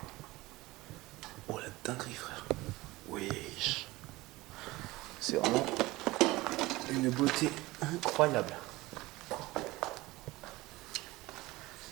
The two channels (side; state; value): left; quieter; 19.9 dB